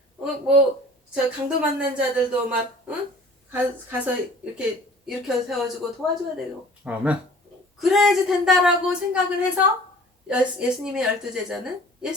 저 강도 만난 자들도 막 가서 이렇게 일으켜 세워주고 도와줘야 되고 아멘. 그래야지 된다라고 생각을 해서 예수님의 12 제자는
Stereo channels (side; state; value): both; normal; correlation 0.48